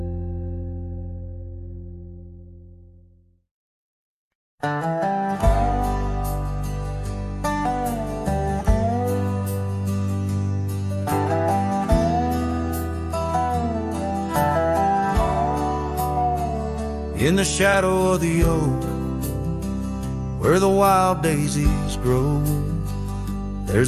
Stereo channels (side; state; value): both; identical; correlation 1.00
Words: the shadow of the oak, where the wild daisies grow,